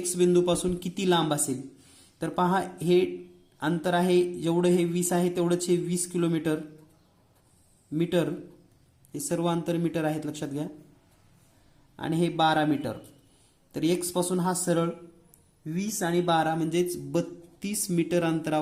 बिंदूपासून किती लांब असेल. तर पहा, हे अंतर आहे जेवढं हे 20 आहे तेवढंच हे 20 किलोमीटर मीटर, हे सर्व अंतर मीटर आहेत लक्षात घ्या. आणि हे 12 मीटर. तर एक्स पासून हा सरळ 20 आणि 12 म्हणजेच 32 मीटर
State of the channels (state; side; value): identical; both; correlation 1.00